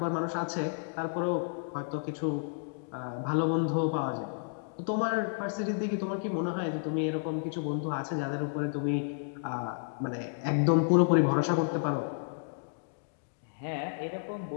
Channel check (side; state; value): right; silent; digital silence